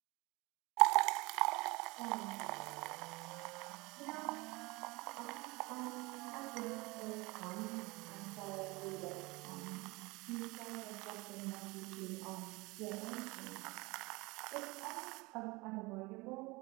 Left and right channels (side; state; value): left; quieter; 24.0 dB